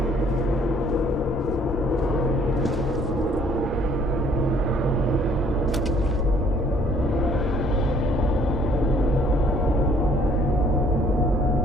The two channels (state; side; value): normal; both; correlation 0.60